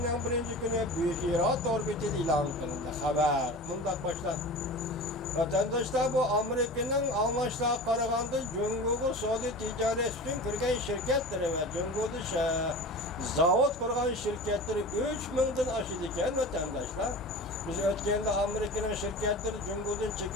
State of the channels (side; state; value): both; normal; correlation 0.34